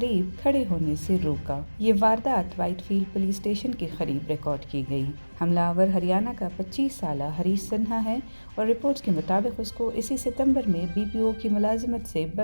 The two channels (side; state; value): both; inverted; correlation -1.00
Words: खड़े होने से रोका। ये वारदात व्हाइटफील्ड पुलिस स्टेशन के करीब रिकॉर्ड की गई। हमलावर हरियाणा का 25 साला हरीश सिन्हा है और रिपोर्ट्स के मुताबिक उसको इसी सितंबर में बीपीओ की मुलाजिमत से